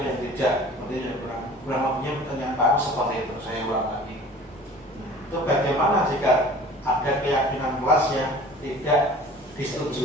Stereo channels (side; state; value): both; normal; correlation 0.45